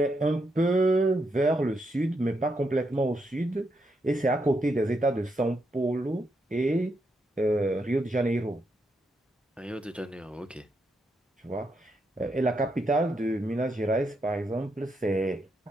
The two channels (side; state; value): both; normal; correlation 0.80